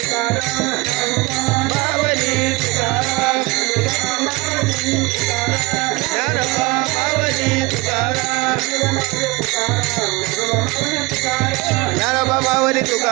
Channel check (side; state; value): left; quieter; 24.0 dB